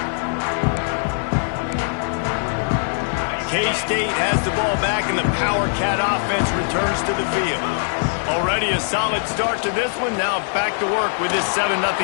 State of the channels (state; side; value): silent; right; digital silence